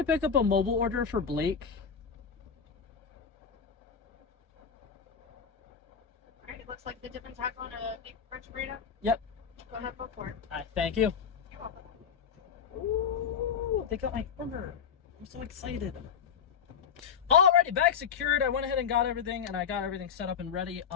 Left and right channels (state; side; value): quieter; right; 7.0 dB